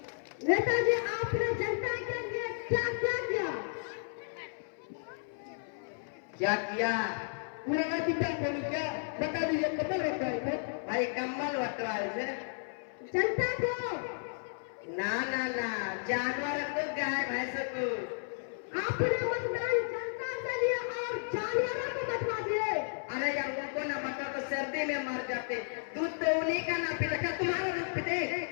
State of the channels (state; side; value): silent; right; 56 dB below the other